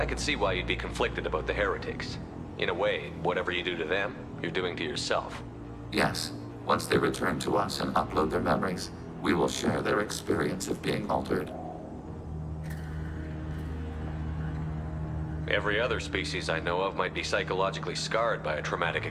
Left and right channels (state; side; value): identical; both; correlation 1.00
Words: could see why you'd be conflicted about the heretics. In a way, whatever you do to them, you're doing to yourself. Yes, once they return to us and upload their memories, we will share their experience of being altered. Every other species I know of might be psychologically scarred by a traumatic